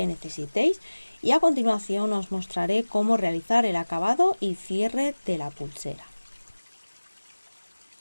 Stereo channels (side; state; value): both; inverted; correlation -1.00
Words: necesitéis y a continuación os mostraré cómo realizar el acabado y cierre de la pulsera.